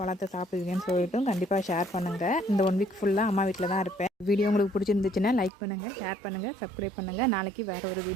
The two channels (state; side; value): drops out; left; at 5.5 s